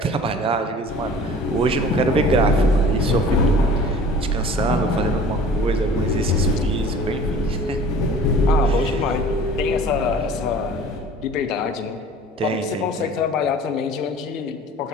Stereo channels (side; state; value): both; normal; correlation 0.46